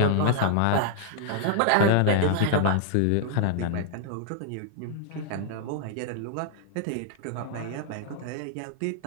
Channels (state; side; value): different; both; correlation 0.00